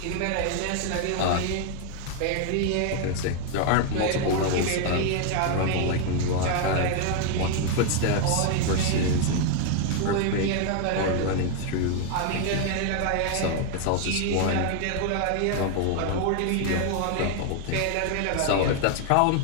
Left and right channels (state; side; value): different; both; correlation 0.00